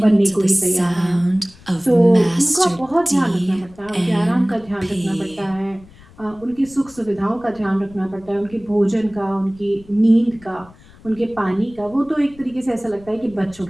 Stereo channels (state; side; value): noise; left; rumble, 24 dB below the sound